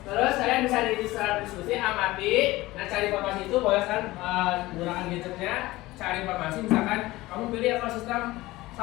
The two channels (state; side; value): quieter; right; 18.8 dB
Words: Terus kalian bisa diskusi, amati, nah cari informasi itu boleh kan menggunakan gadgetnya, cari informasi misalkan kamu pilih ekosistem